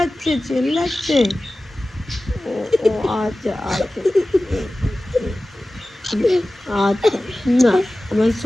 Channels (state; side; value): normal; both; correlation 0.96